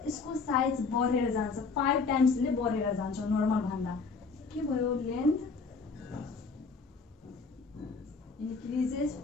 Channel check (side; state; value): right; quieter; 4.6 dB